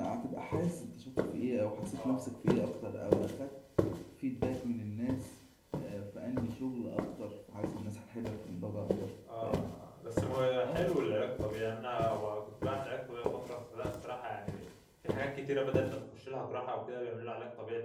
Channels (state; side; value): identical; both; correlation 1.00